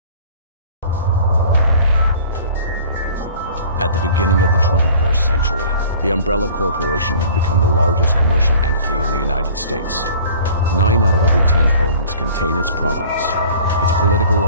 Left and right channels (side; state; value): both; inverted; correlation -0.47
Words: At the beginning of the 21st century, the Umbrella Corporation had become the largest commercial entity in the United States. 9 out of every 10 homes contain its products. Its political